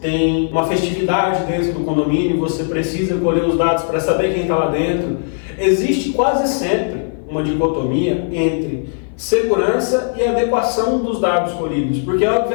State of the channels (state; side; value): silent; right; 55 dB below the other